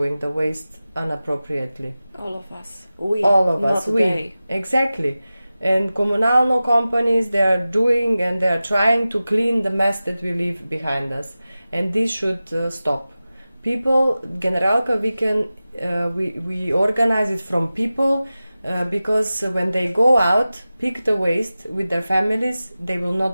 the waste inappropriately. All of us. We. Exactly. And comunalno companies, they are doing and they are trying to clean the mess that we leave behind us. And this should stop. People, Generalka Weekend, we organize it from people because when they go out, pick the waste with their families, they will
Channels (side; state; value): both; inverted; correlation -0.95